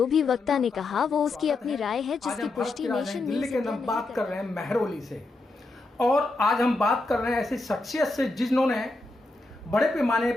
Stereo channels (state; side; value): quieter; right; 3.1 dB